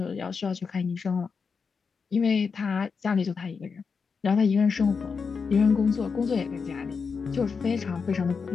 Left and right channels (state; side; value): quieter; right; 5.4 dB